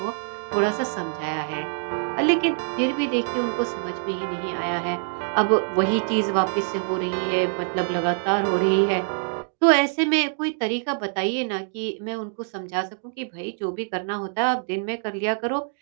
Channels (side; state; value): left; silent; digital silence